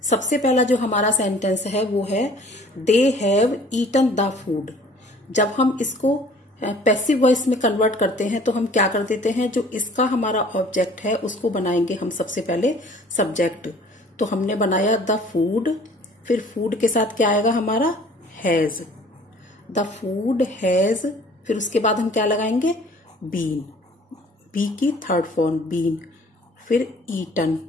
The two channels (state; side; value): normal; both; correlation 0.52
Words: सबसे पहला जो हमारा सेंटेंस है वो है they have eaten the food. जब हम इसको पैसिव वॉइस में कन्वर्ट करते हैं तो हम क्या कर देते हैं, जो इसका हमारा ऑब्जेक्ट है उसको बनाएंगे हम सबसे पहले सब्जेक्ट। तो हमने बनाया द फूड, फिर फूड के साथ क्या आएगा हमारा हैज, द फूड हैज। फिर उसके बाद हम क्या लगाएंगे बीन, बी की थर्ड फॉर्म बीन। फिर ईटन